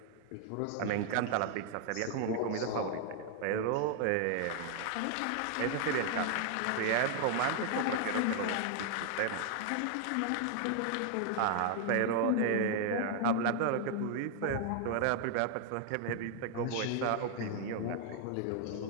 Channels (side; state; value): both; different; correlation 0.00